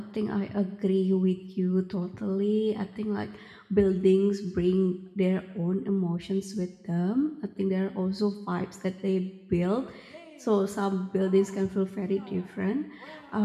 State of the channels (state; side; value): identical; both; correlation 1.00